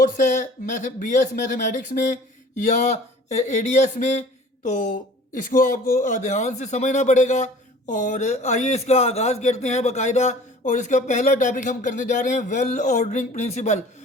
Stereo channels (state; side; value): normal; both; correlation 0.47